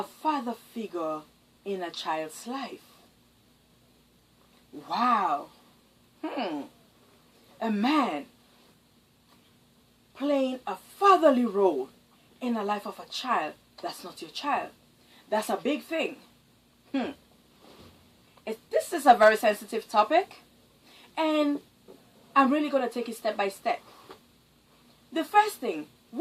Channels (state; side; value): identical; both; correlation 1.00